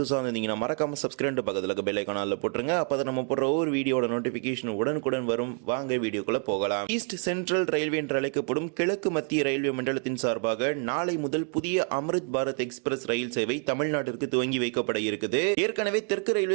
வந்தீங்கன்னா மறக்காம சப்ஸ்கிரைப் பக்கத்தில் பெல் ஐகான்ல போட்டுருங்க. அப்பதான் நம்ம போடுற ஒவ்வொரு வீடியோட நோட்டிபிகேஷன் உடனுக்குடன் வரும். வாங்க வீடியோக்குள்ள போகலாம். ஈஸ்ட் சென்ட்ரல் ரயில்வே என்று அழைக்கப்படும் கிழக்கு மத்திய ரயில்வே மண்டலத்தின் சார்பாக நாளை முதல் புதிய அம்ரித் பாரத் எக்ஸ்பிரஸ் ரயில் சேவை தமிழ்நாட்டிற்கு துவங்கி வைக்கப்பட இருக்குது. ஏற்கனவே தெற்கு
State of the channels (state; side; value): quieter; left; 39.6 dB